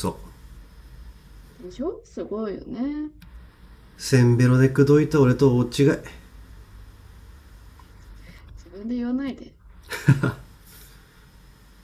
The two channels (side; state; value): both; identical; correlation 1.00